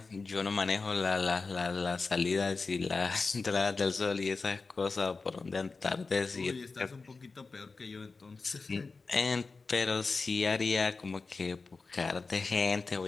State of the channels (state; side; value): quieter; right; 4.2 dB